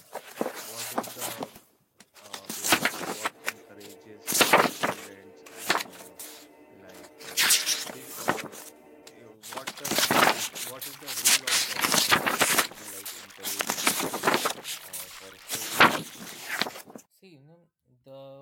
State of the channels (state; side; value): identical; both; correlation 1.00